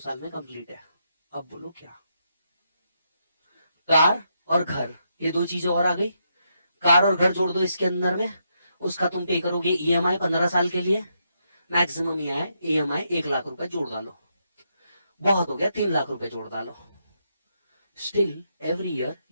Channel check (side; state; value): both; inverted; correlation -0.80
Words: में कंप्लीट है। अब बोलो क्या? कार और घर, ये 2 चीजें और आ गई। कार और घर जोड़ दो इसके अंदर में, उसका तुम पे करोगे ईएमआई 15 साल के लिए, मैक्सिमम ईएमआई 1 लाख रुपए जोड़ डालो, बहुत हो गया 3 लाख रुपए जोड़ डालो। Still every year